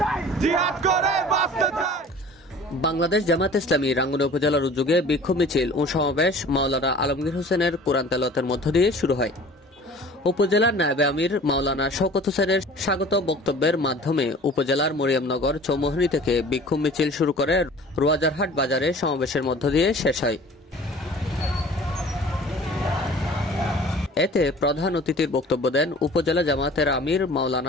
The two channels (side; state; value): both; normal; correlation 0.45